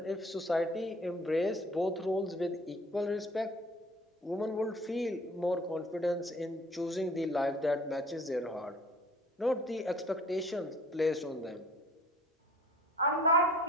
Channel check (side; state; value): both; normal; correlation 0.51